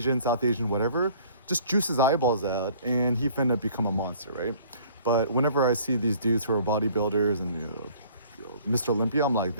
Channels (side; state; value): both; inverted; correlation -0.54